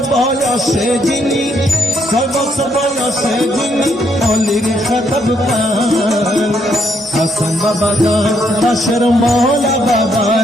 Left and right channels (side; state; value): both; normal; correlation 0.73